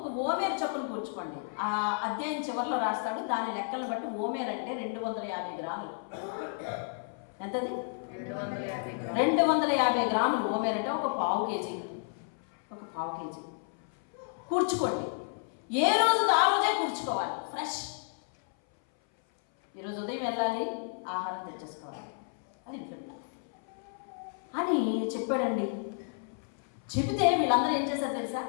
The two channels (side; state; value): right; silent; 57 dB below the other